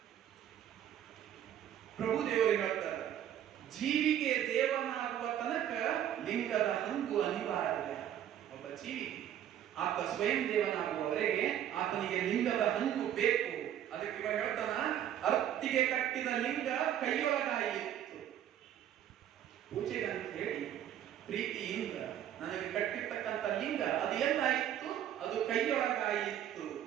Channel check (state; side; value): quieter; left; 10.7 dB